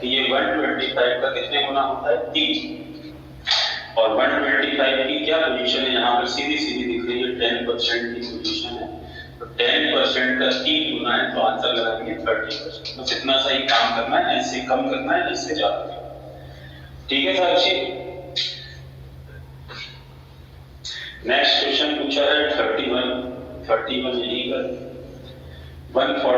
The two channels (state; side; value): identical; both; correlation 1.00